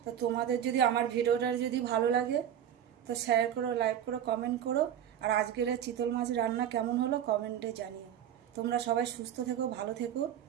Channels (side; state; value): left; quieter; 9.9 dB